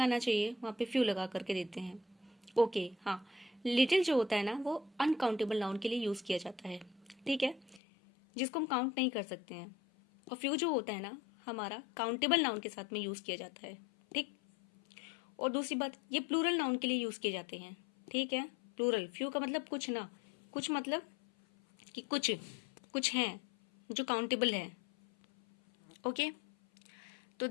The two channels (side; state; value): right; drops out; at 7.8 s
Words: चाहिए वहाँ पे फ्यू लगा करके देते हैं। ओके, हाँ, लिटिल जो होता है ना वो अनकाउंटेबल नाउन के लिए यूज किया जाता है। ठीक है, जिसको हम काउंट नहीं कर सकते हैं। और फ्यू जो होता है ना हमारा काउंटेबल नाउन के साथ में यूज किया जाता है। ठीक, और दूसरी बात, ये प्लूरल नाउन के लिए यूज किए जाते हैं। ठीक है, प्लूरल, फ्यू का मतलब कुछ ना, कुछ मतलब कि कुछ हैं जो काउंटेबल है। ओके, तो